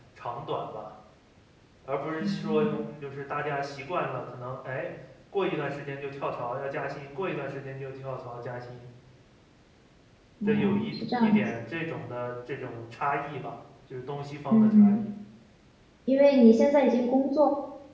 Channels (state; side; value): identical; both; correlation 1.00